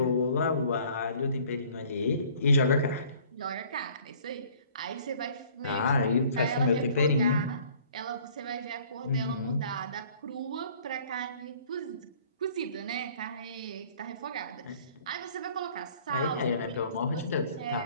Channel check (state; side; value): inverted; both; correlation -0.54